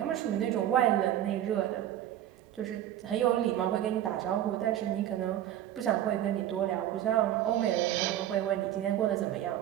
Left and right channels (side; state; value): left; quieter; 12.0 dB